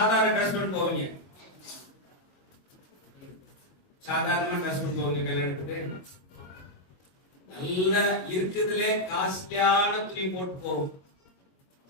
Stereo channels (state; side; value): late; right; 22 ms